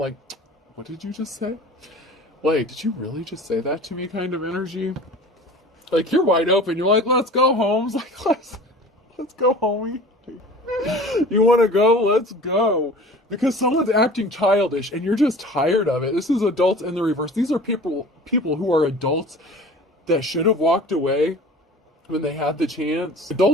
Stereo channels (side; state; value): both; normal; correlation 0.42